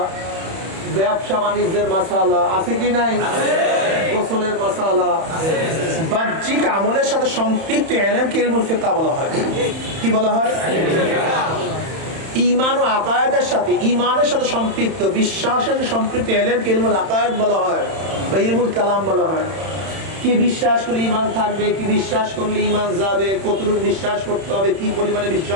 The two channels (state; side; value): late; left; 31 ms